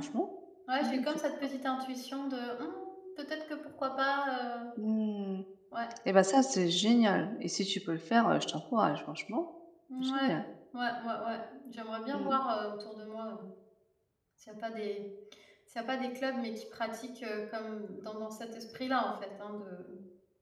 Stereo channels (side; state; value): both; identical; correlation 1.00